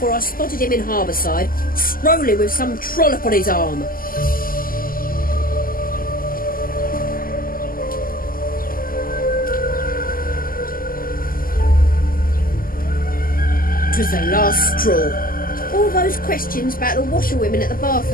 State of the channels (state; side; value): late; right; 0.42 ms